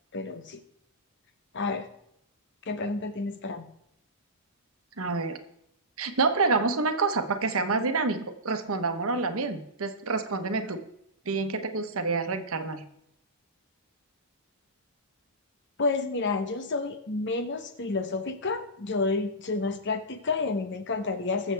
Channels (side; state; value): both; normal; correlation -0.17